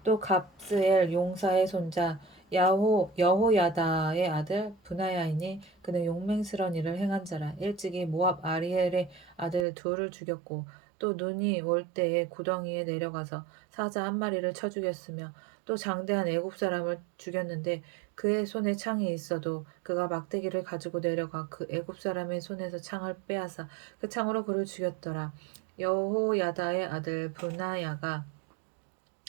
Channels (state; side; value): drops out; left; at 9.7 s